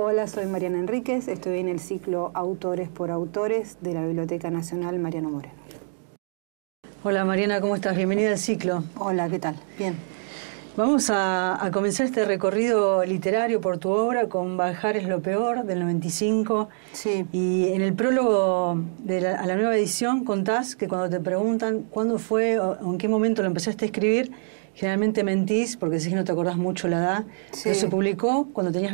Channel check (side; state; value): left; silent; digital silence